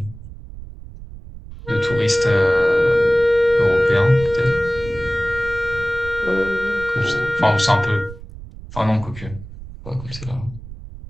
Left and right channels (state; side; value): noise; right; rumble, 15 dB below the sound